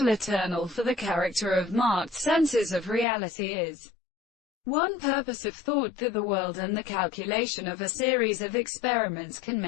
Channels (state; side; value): drops out; right; at 3.1 s